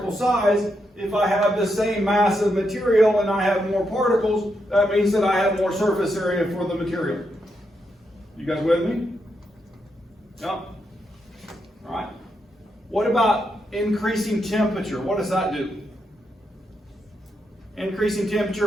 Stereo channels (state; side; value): normal; both; correlation 0.82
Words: size. If I have the same mass of material and I have more particles, that means that I have more surface area for the material. You guys with me? Yeah. All right. What about increasing temperature? What does that do? Increasing